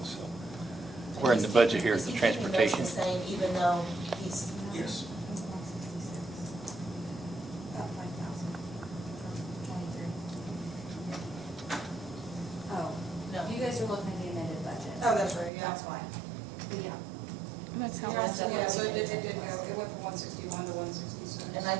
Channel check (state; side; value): drops out; left; at 15.5 s